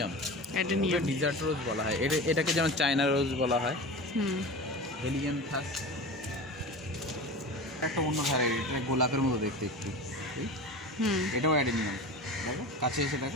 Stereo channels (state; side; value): normal; both; correlation 0.31